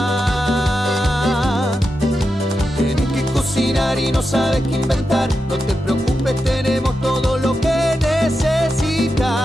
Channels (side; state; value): both; normal; correlation 0.88